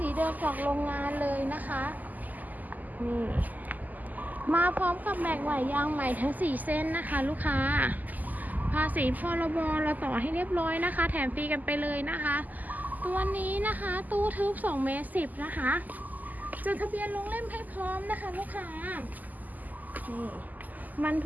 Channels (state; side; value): late; left; 0.082 ms